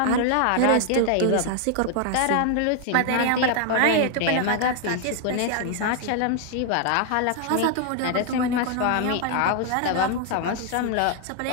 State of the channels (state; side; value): different; both; correlation 0.00